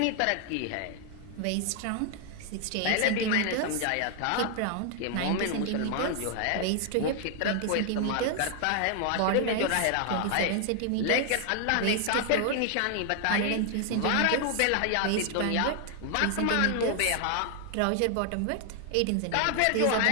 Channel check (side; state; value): both; different; correlation 0.00